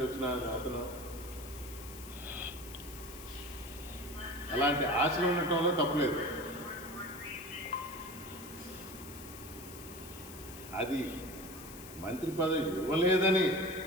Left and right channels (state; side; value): noise; left; hiss, 15 dB below the sound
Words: వచ్చిన అతను, అలాంటి ఆశలు ఉండటంలో తప్పలేదు. అది మంత్రి పదవి ఇవ్వలేదని